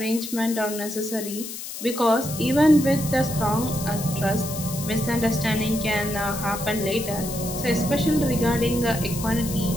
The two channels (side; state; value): left; noise; hiss, 9 dB below the sound